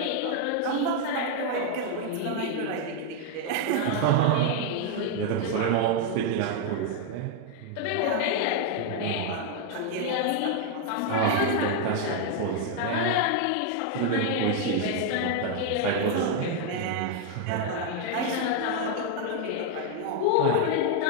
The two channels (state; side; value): different; both; correlation 0.00